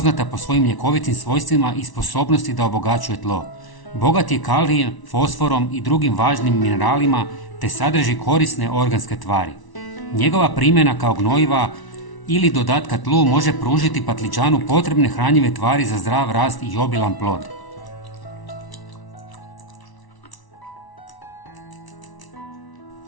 po svojim ljekovitim svojstvima i sposobnosti da obogaćuje tlo. Bogat je kalijem, fosforom i drugim važnim mineralima te sadrži korisne organske tvari. Njegova primjena kao gnojiva ili dodatka tlu može pružiti patliđanu potrebne hranjive tvari za zdrav rast i obilan plod.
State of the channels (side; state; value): right; late; 1.0 ms